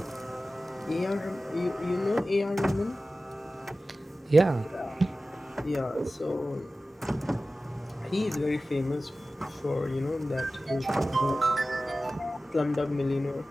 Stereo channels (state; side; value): normal; both; correlation 0.95